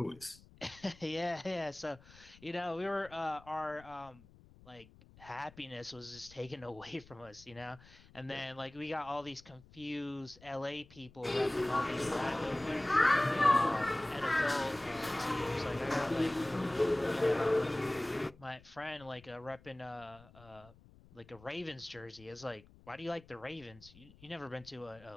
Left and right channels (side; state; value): left; noise; rumble, 23 dB below the sound